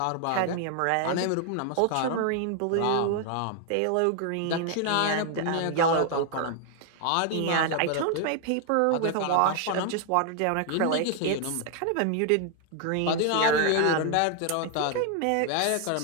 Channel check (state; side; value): different; both; correlation 0.00